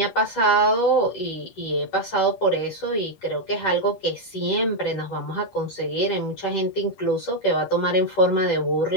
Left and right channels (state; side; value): late; right; 10 ms